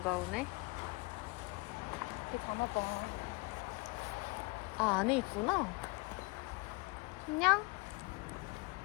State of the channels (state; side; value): quieter; right; 25.9 dB